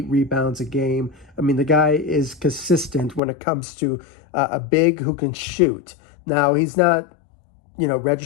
rebounds a game. I mean, the guy is consistent when it comes to a big who can shoot. Now, he's not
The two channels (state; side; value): drops out; right; at 3.2 s